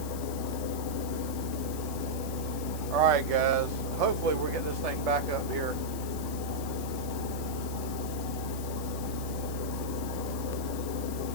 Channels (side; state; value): left; noise; hiss, 12 dB below the sound